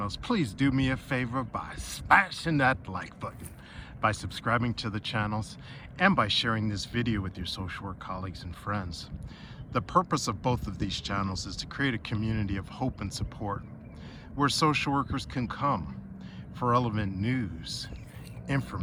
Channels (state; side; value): identical; both; correlation 1.00